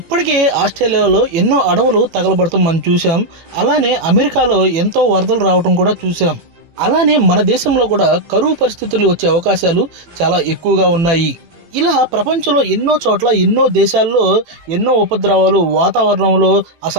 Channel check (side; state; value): left; late; 18 ms